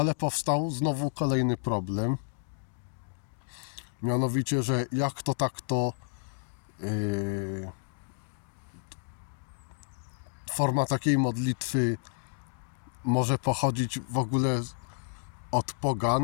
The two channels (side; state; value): right; silent; digital silence